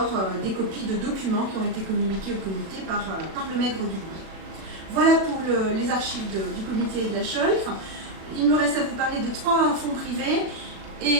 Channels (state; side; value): late; left; 37 ms